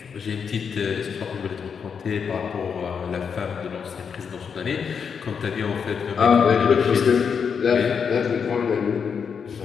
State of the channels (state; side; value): quieter; right; 6.5 dB